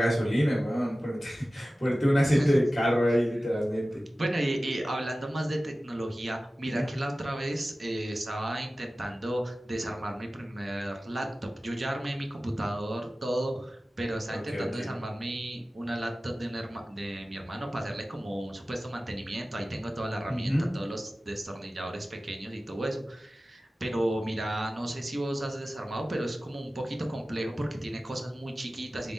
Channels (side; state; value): both; normal; correlation 0.96